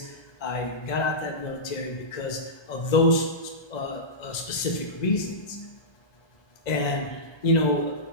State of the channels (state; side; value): late; right; 1.3 ms